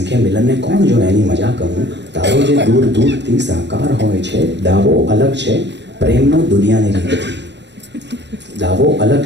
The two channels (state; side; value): late; left; 0.51 ms